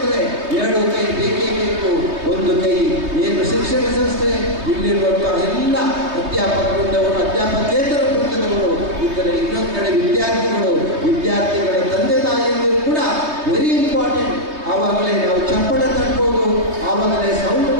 ಎರಡು ಕೈ ಬೇಕೇ ಬೇಕು. ಒಂದು ಕೈ ಏನು ಶಿಕ್ಷಣ ಸಂಸ್ಥೆ ಇಲ್ಲಿರುವಂತಹ ಎಲ್ಲ ಅಧ್ಯಾಪಕ ವೃಂದವರು, ಅಧ್ಯಾಪಕೇತರ ವೃಂದದವರು ಇದ್ದರೆ, ಇನ್ನೊಂದು ಕಡೆ ವಿದ್ಯಾರ್ಥಿಗಳ ತಂದೆ ತಾಯಿಯಂದರು ಕೂಡ ವೆರಿ ಇಂಪಾರ್ಟೆಂಟ್. ಆವಾಗಲೇ ನಾವು ಚಪ್ಪಳ ತಟ್ಬೋದು, ಆವಾಗಲೇ ಸೌಂಡ್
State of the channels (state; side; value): late; left; 3.2 ms